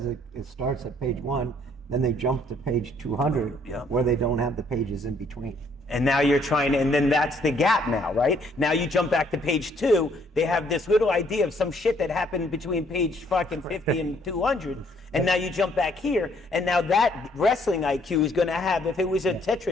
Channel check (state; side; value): normal; both; correlation 0.65